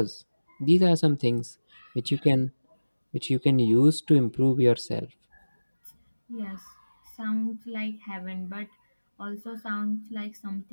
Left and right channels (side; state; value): both; inverted; correlation -1.00